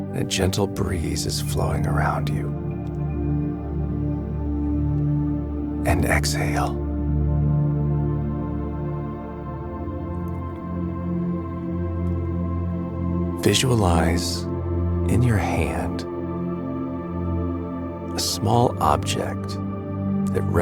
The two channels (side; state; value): both; identical; correlation 1.00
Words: and a gentle breeze is flowing around you. And exhale. Visualize in your hand a small object that